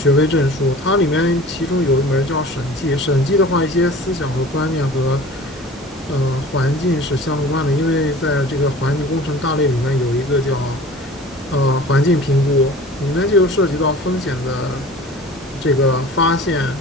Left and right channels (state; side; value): normal; both; correlation 0.42